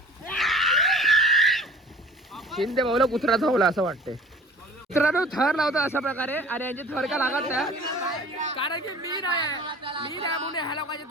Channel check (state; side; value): normal; both; correlation 0.45